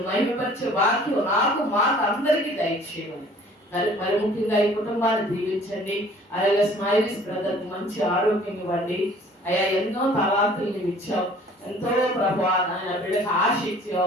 మహిమపరిచే వాక్యం నాకు మాకు అందరికీ దయచేయమని మరి ముఖ్యంగా ఈ కుటుంబాన్ని దీవించండి. అలాగే స్మైలీస్ బ్రదర్ మంచి ఆరోగ్యం ఇవ్వండి. అయ్యా ఎన్నో తలాంతులు నీవు ఇచ్చావు, ఎంతో ప్రభా ఆయన బిడ్డకు ఆశ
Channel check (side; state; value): both; normal; correlation 0.52